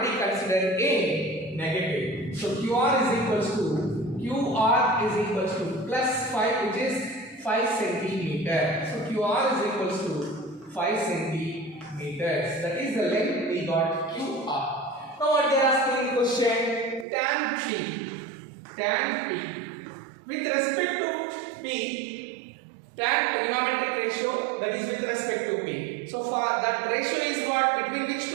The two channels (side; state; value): left; drops out; at 17.1 s